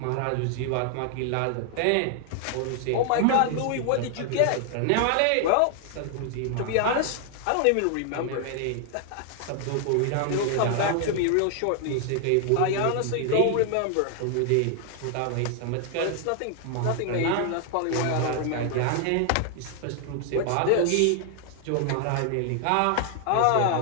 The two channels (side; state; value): both; different; correlation 0.00